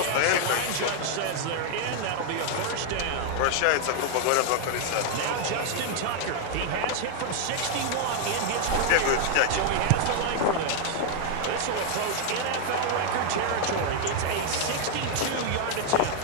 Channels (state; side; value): different; both; correlation 0.00